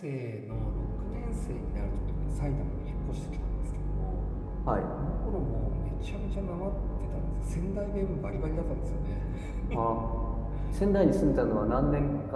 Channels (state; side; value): identical; both; correlation 1.00